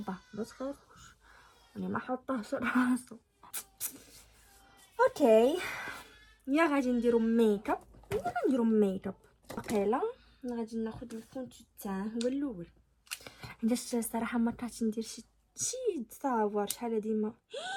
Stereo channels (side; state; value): both; identical; correlation 1.00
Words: ما تخافوش، انا ما حطاهش راسو. اوكي، يا غادي نديرو ميكاب. واقيلا غادي ناخذ الفون تاعه هو الاول، علاش الصراحه ما طلعتش ندير شي تصاور شحال ديما.